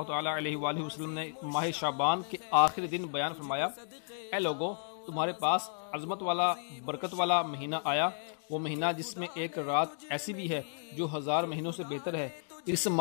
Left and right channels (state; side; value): silent; right; digital silence